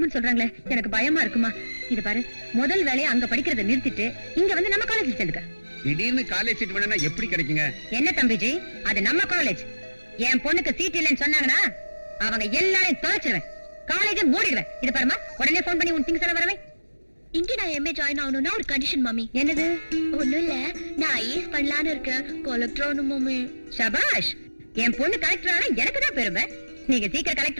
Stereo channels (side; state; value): both; inverted; correlation -1.00